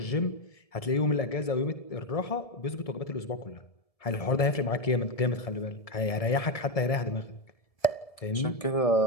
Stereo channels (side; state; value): right; late; 1.7 ms